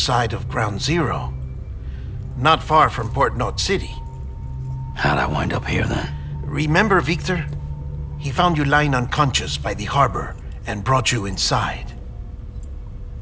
of Ground Zero. Not far from Port Knot City. How'd I wind up here then? Remember Victor? He found you lying unconscious by the harbor and brought you inside.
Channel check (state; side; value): identical; both; correlation 1.00